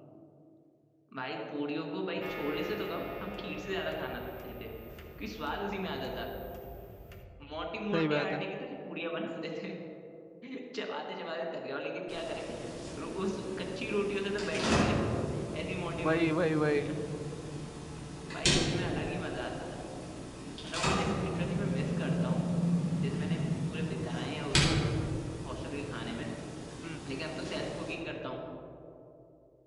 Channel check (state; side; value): identical; both; correlation 1.00